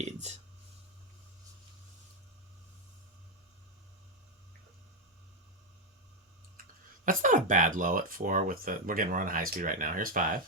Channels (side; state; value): both; normal; correlation 0.03